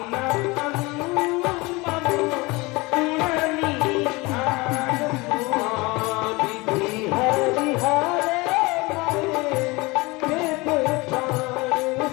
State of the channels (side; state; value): right; quieter; 23.9 dB